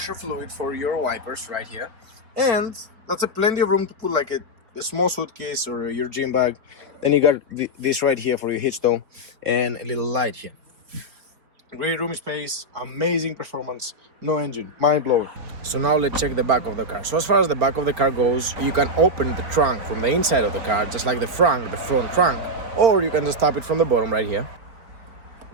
fluid for your wipers right here, and that's a plenty of room to put like a small suitcase or your gym bag. Then you got this right here for your hitchstone and a little light here. Great room space, amazing performance, no engine, mind-blowing. So now let's check the back of the car. So as far as the back of the car goes, you can open the trunk from the inside of the car, just like the front trunk, or you can just tap it from the bottom right here.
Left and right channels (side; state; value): left; late; 4.6 ms